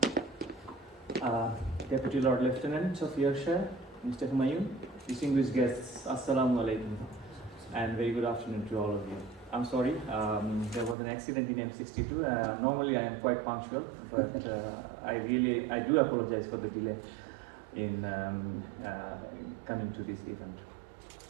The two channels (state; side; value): drops out; left; at 11.0 s